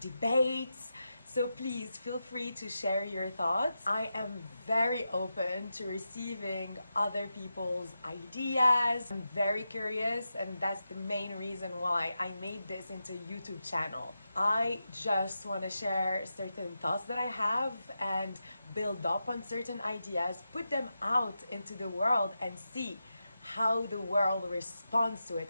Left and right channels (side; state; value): both; inverted; correlation -0.89